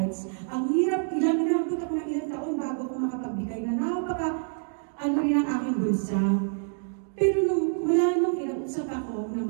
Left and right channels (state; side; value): silent; left; digital silence